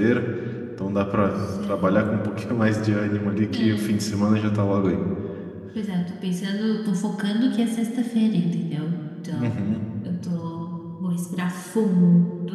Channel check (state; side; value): identical; both; correlation 1.00